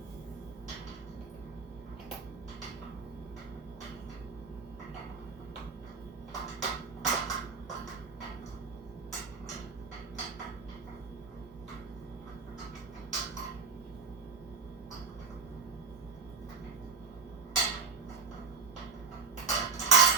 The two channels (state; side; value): quieter; left; 5.1 dB